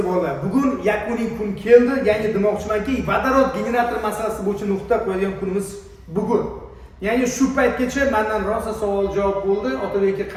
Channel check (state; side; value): identical; both; correlation 1.00